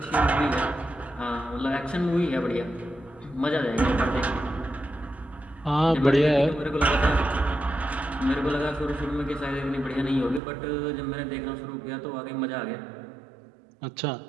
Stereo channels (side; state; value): left; drops out; at 10.4 s